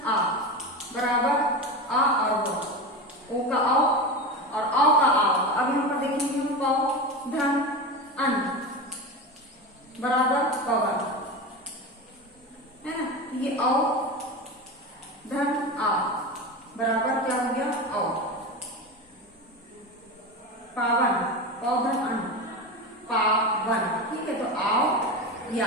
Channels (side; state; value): both; normal; correlation 0.23